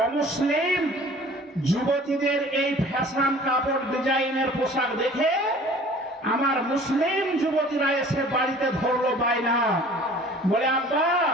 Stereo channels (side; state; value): both; normal; correlation 0.48